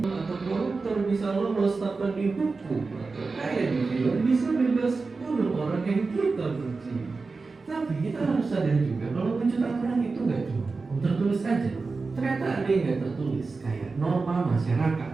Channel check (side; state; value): left; quieter; 4.1 dB